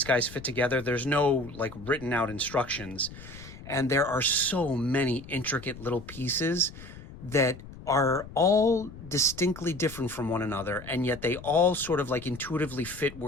guys fit together. There's no like written out instructions, and there are so many intricate little pieces that are all distinctly different from one another, and yet they all sort of like intuitively fit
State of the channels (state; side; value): noise; left; rumble, 15 dB below the sound